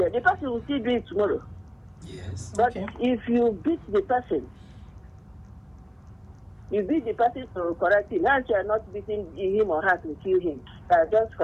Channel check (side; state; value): both; identical; correlation 1.00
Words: The person will still do it tomorrow. Yes. But if you beat the person, to correct him. Now you are not beating him or her to kill him. You are just